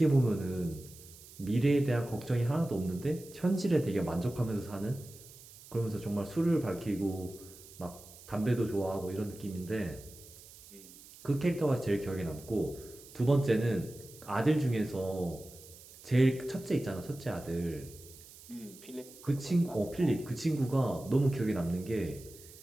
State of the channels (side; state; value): right; noise; hiss, 20 dB below the sound